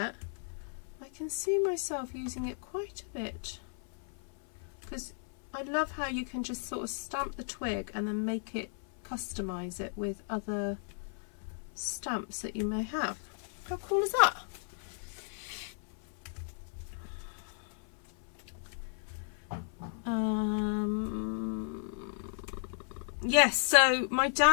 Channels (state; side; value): silent; right; 55 dB below the other